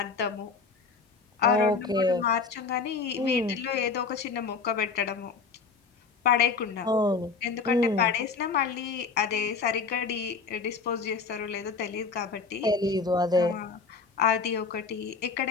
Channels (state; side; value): quieter; right; 4.8 dB